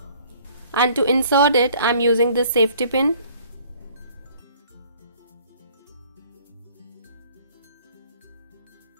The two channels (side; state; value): both; inverted; correlation -0.55